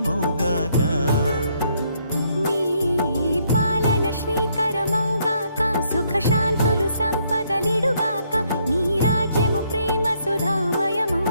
నీ పాలన శ్రీకరమౌగాక సుఖ శాంతులు సంపదలిడుగా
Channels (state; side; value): inverted; both; correlation -0.71